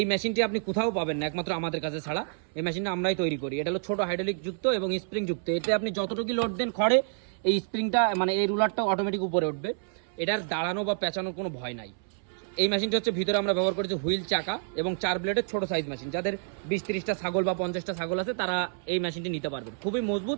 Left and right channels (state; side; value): silent; left; 59 dB below the other